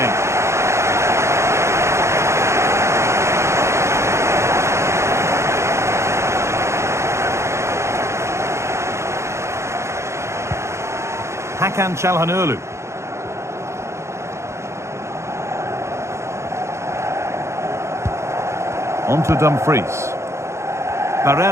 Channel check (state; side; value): late; left; 0.13 ms